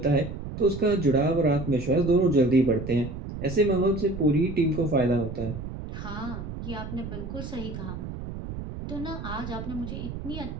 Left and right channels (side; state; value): right; noise; rumble, 8 dB below the sound